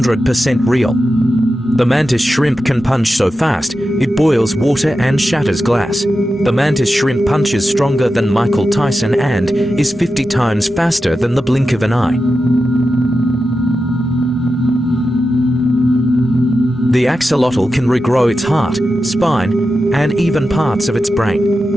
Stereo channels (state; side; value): normal; both; correlation 0.91